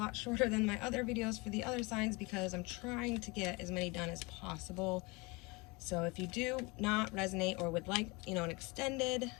shorter than my other videos for the other signs, because I'm trying to get as many done as possible. So if you do not resonate or would like, you know, an extended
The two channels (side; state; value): right; quieter; 26.5 dB